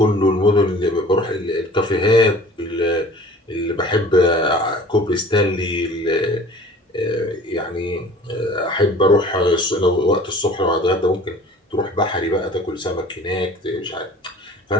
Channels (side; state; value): both; normal; correlation 0.46